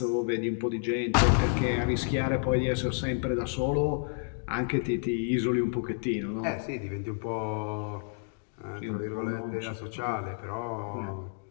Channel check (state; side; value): silent; right; digital silence